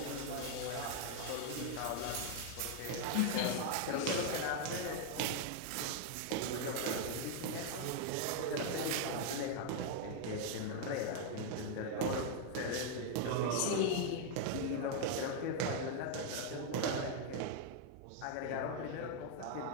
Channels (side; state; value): both; different; correlation 0.00